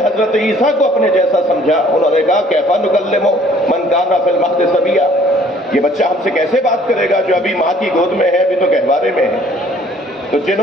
حضرت عیسیٰ کو اپنے جیسا سمجھا انہوں نے کہا کیفا نکلمو من کان فی المہد صبیا، یہ بچہ ہم سے کیسے بات کرے گا جو ابھی ماں کی گود میں ہے، ابھی تو گہوارے میں ہے۔ تو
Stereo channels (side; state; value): both; normal; correlation 0.57